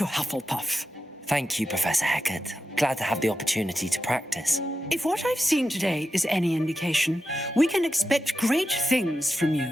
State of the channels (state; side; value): normal; both; correlation 0.90